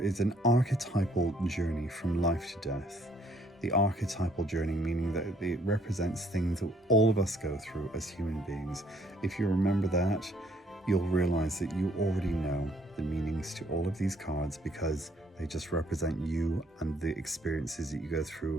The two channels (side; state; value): both; normal; correlation 0.65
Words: an archetypal journey from life to death. The archetypal journey, meaning that it represents things that all of us go through as human beings. If you remember that, you'll realize that you already know the meanings to all of these cards, because they just represent you and the experiences that you go